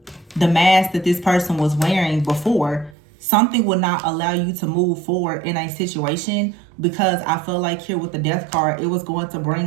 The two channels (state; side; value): drops out; left; at 3.0 s